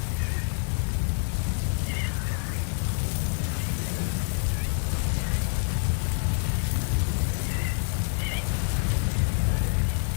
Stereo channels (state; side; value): silent; right; 60 dB below the other